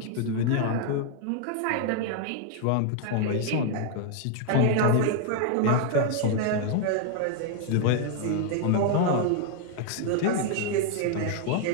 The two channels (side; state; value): both; different; correlation 0.00